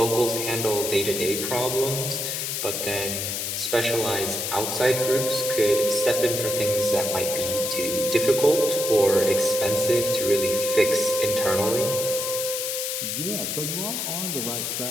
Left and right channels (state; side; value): noise; left; hiss, 2 dB below the sound